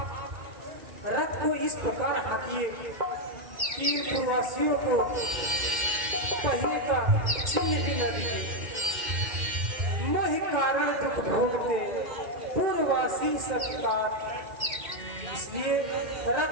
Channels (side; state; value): left; late; 2.1 ms